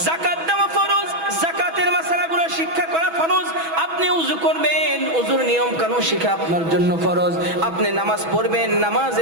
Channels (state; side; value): late; left; 6.1 ms